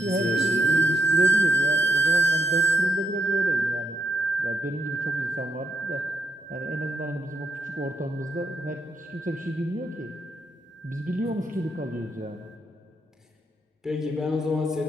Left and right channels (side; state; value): both; normal; correlation 0.79